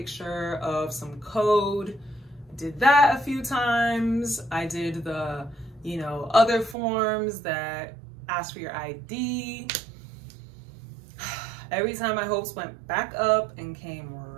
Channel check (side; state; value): left; drops out; at 6.8 s